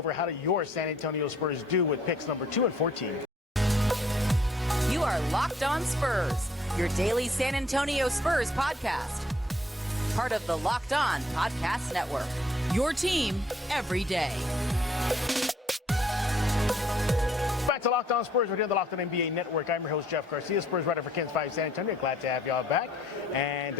How do your San Antonio Spurs do with picks number 2 and 14? You are Locked On Spurs, your daily San Antonio Spurs podcast. Part of the Locked On Podcast Network, your team every day. Back to Locked On Spurs. We're here on the Locked On NBA Network. I'm your host, Jeff Garcia, Spurs writer for KENS 5 San Antonio. Glad to have y'all back. And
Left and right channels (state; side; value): normal; both; correlation 0.62